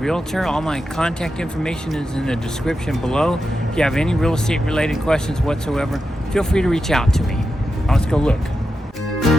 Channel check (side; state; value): both; normal; correlation 0.88